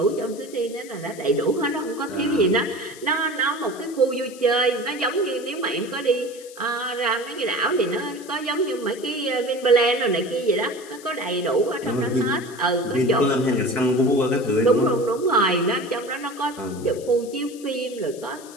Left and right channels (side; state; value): left; noise; hiss, 19 dB below the sound